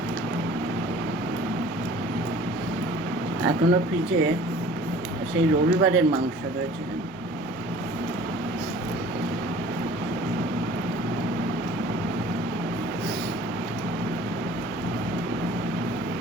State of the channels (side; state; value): both; normal; correlation 0.48